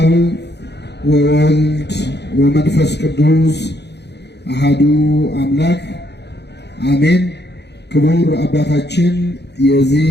ወወልድ ወመንፈስ ቅዱስ አሐዱ አምላክ አሜን። ክቡር አባታችን የዚህ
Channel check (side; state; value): right; late; 0.49 ms